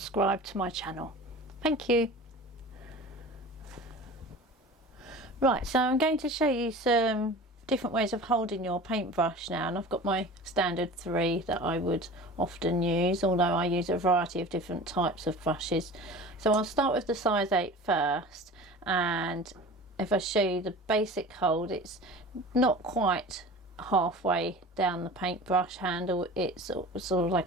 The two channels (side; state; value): both; normal; correlation 0.38